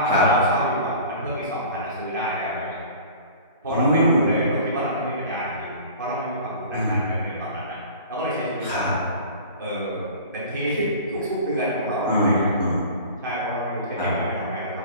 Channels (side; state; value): both; inverted; correlation -0.41